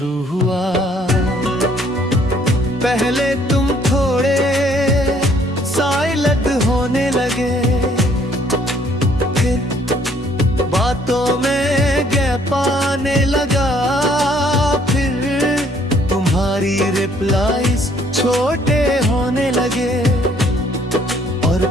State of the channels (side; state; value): both; normal; correlation 0.63